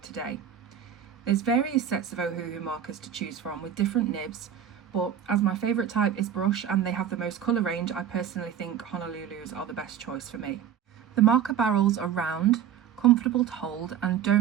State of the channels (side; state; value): left; quieter; 9.2 dB